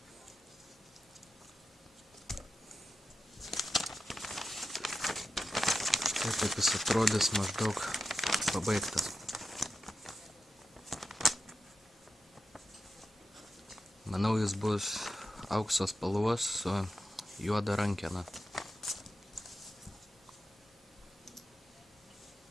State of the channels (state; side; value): normal; both; correlation 0.89